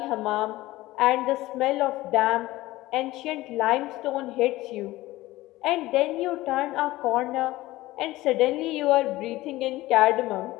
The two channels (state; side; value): quieter; right; 17.8 dB